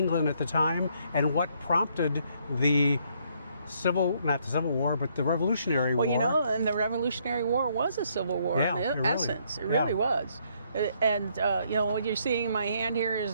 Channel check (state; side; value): inverted; both; correlation -0.70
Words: at the time and what prompted the not the Civil War, but the Revolutionary War. Well, and the Revolutionary War was a civil war in essence. It really was. And what you're seeing in my hand here